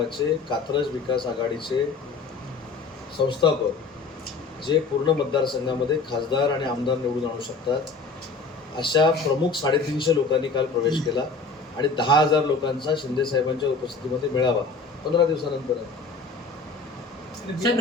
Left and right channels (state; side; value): quieter; right; 4.1 dB